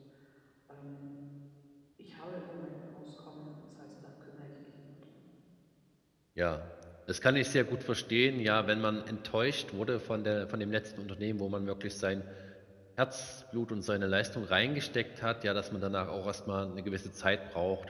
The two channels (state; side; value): identical; both; correlation 1.00